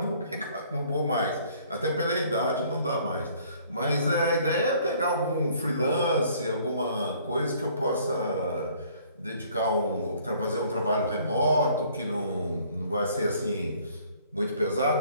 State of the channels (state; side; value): inverted; both; correlation -0.58